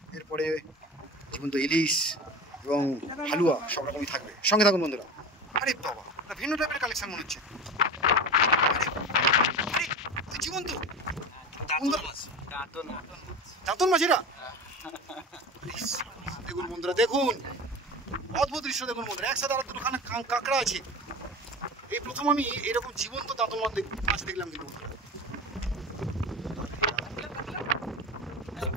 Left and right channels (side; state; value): both; normal; correlation 0.30